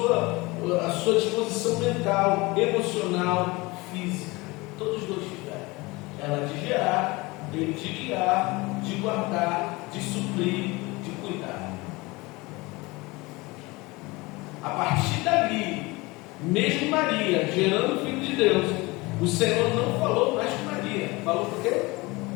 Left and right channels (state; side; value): quieter; right; 23.4 dB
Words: sua disposição mental, emocional, física. Todos dois tiveram. Ela de gerar, ele de guiar, de guardar, de suprir, de cuidar. A partir dali, mesmo Maria gerando o Filho de Deus, o Senhor não falou mais com Maria. Falou por quê?